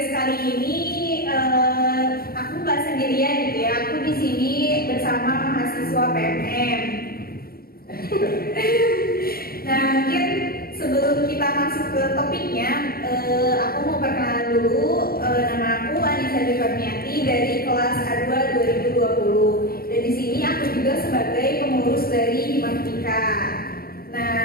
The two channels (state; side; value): late; right; 0.44 ms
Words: kali ini aku nggak sendirian gitu ya. Aku di sini bersama mahasiswa PMM. Nah, mungkin sebelum kita masuk ke topiknya, aku mau perkenalan dulu. Nama aku Anissa Devarniati dari kelas A2 2020. Dan di sini aku juga sebagai pengurus dari Matematika. Nah,